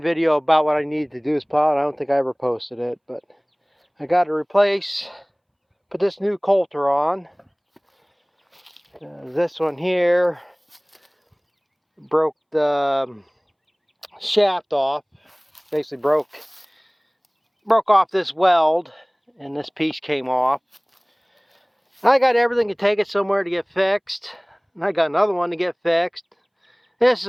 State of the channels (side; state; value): both; identical; correlation 1.00